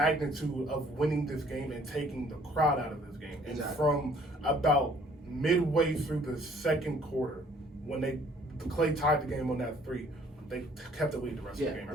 of winning this game and taking the crowd out of this game. And from about midway through the second quarter, when Clay tied the game on that 3, they kept the lead the rest of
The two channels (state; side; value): normal; both; correlation 0.59